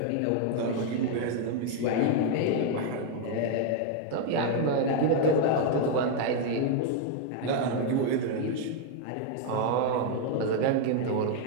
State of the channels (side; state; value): both; different; correlation 0.00